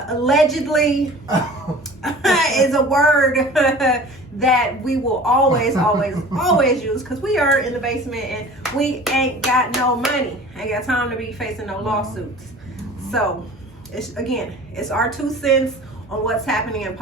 is a word that we will always use, because we are in the basement and we ain't got no money. Ain't got time to be facing no lawsuits. So it's our 2 cents on what's happening in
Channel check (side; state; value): both; normal; correlation 0.42